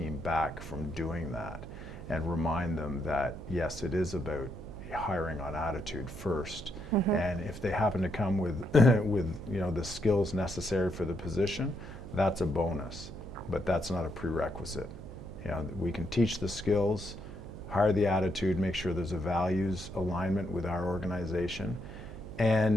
back from doing that, and remind them that yes, it is about hiring on attitude first. And if they happen to come with the skills necessary for the position, that's a bonus, but that's not a prerequisite. We can teach the skills, hire the attitude, make sure there's a values alignment with our organization,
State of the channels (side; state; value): right; noise; hum, 13 dB below the sound